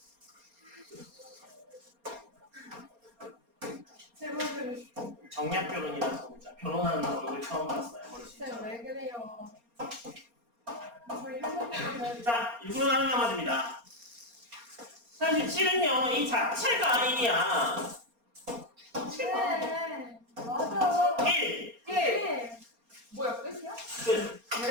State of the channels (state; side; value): late; left; 4.3 ms